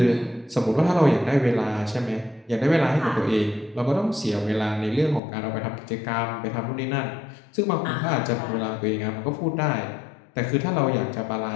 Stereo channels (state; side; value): drops out; right; at 5.2 s